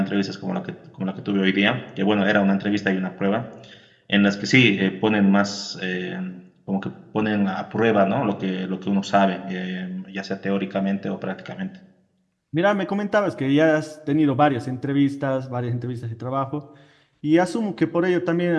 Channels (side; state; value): both; identical; correlation 1.00